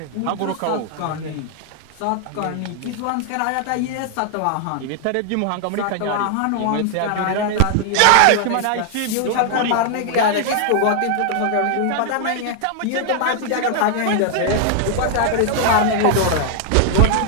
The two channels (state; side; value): different; both; correlation 0.00